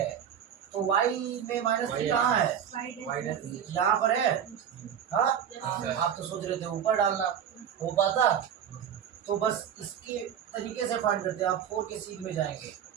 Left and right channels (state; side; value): quieter; left; 8.8 dB